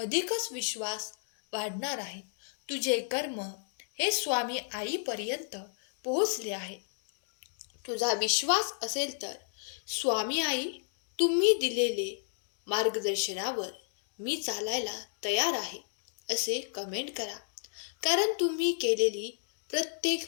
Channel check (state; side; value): silent; right; digital silence